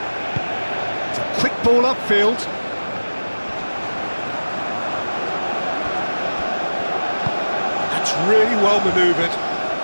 It's a quick ball upfield. That's really well manoeuvred.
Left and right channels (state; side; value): inverted; both; correlation -1.00